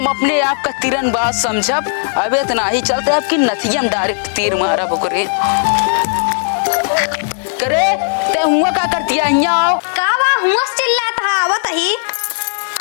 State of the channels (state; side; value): silent; right; digital silence